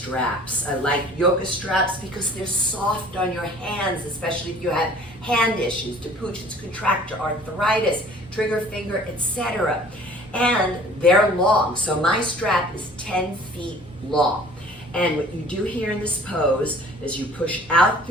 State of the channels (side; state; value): both; normal; correlation 0.50